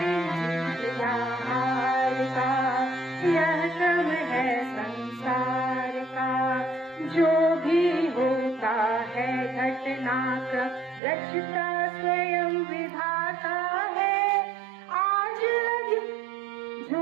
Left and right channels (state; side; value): drops out; left; at 11.0 s